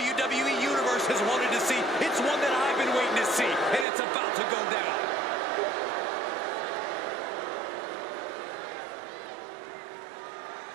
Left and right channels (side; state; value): left; drops out; at 3.9 s